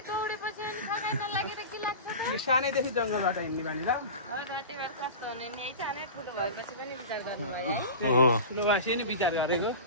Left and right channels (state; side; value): inverted; both; correlation -0.30